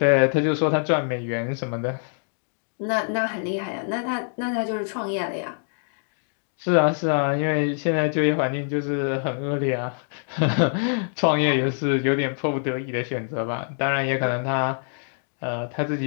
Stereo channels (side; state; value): right; silent; digital silence